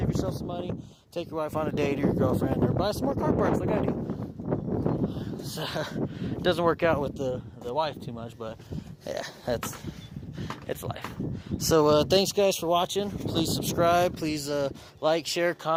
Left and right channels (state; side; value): identical; both; correlation 1.00